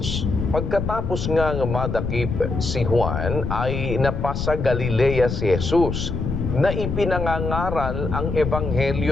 Pagkatapos nga madakip si Juan, ay napasa Galilea si Jesus, na ipinangangaral ang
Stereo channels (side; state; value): left; noise; rumble, 3 dB below the sound